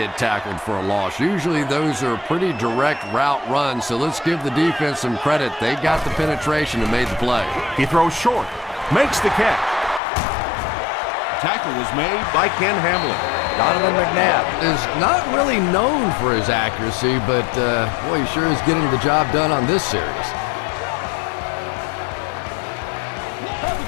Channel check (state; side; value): drops out; right; at 10.0 s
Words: tackled for a loss. Usually those are pretty direct route runs, so let's give the defense some credit. They got the penetration and made the play. He throws short, makes the catch. Tackle was made by Ken Hamlin. Donovan McNabb is not really known for his accuracy, but boy, he sure is getting the job done on this series.